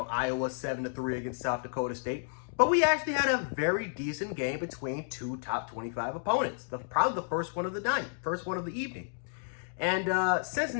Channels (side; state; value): right; silent; digital silence